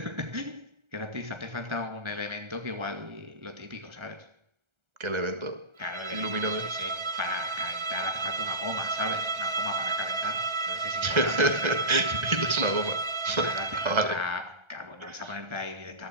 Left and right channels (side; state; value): left; late; 1.3 ms